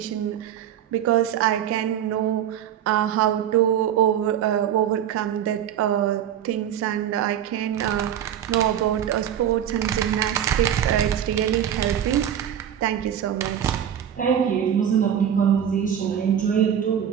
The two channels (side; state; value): left; quieter; 9.8 dB